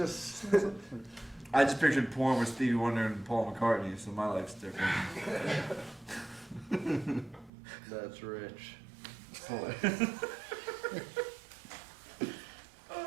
I just pictured porn with Stevie Wonder and Paul McCartney, so my life's different. that's rich.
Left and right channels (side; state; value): left; drops out; at 7.5 s